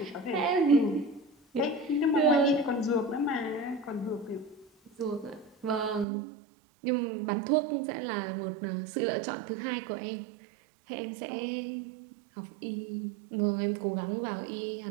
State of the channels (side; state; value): left; drops out; at 6.1 s